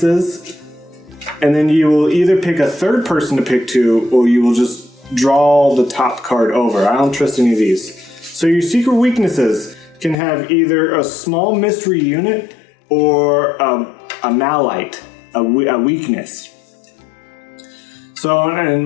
and then you will either pick a third person to pick 2, or you will just draw the top card over. I don't trust any of these. So your secret weaknesses can have either a small mystery unit or a malite, a weakness. So,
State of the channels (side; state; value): right; drops out; at 10.2 s